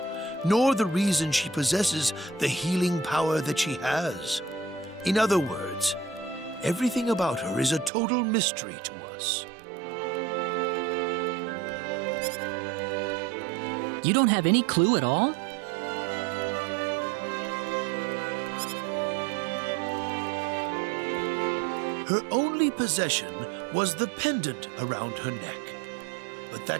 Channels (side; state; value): left; drops out; at 7.9 s